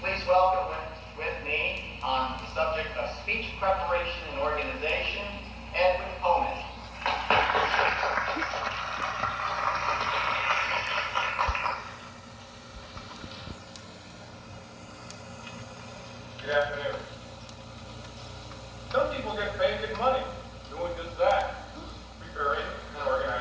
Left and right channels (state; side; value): identical; both; correlation 1.00